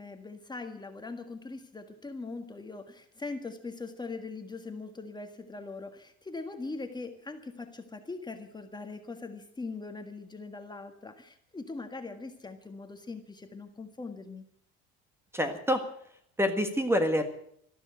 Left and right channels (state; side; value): normal; both; correlation 0.67